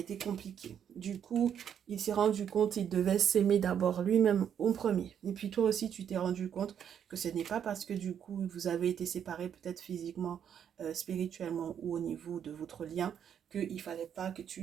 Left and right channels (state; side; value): quieter; left; 8.7 dB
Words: compliqué. Du coup, il s'est rendu compte qu'il devait s'aimer d'abord lui-même au premier. Et puis toi aussi, tu t'es rendu compte que ce n'est pas parce que du coup, vous avez été séparés peut-être physiquement, spirituellement ou au niveau de votre lien, qu'il ne fallait pas que